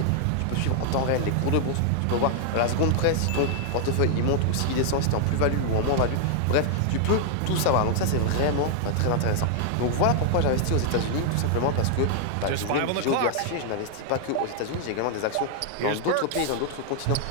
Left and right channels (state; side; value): different; both; correlation 0.00